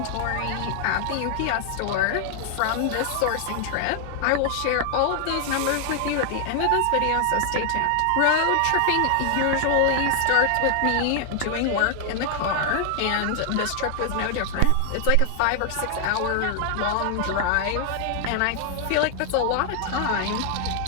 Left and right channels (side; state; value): both; different; correlation 0.00